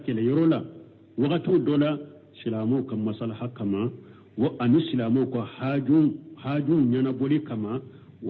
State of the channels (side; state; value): both; identical; correlation 1.00